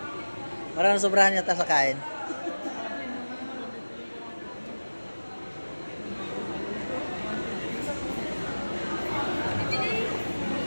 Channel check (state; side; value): inverted; both; correlation -1.00